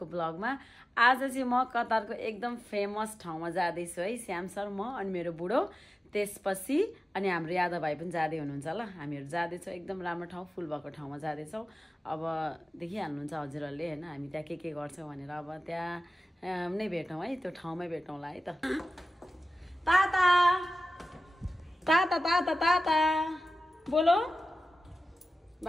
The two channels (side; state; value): both; normal; correlation 0.95